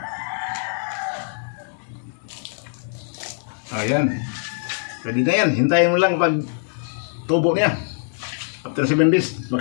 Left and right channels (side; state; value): right; silent; digital silence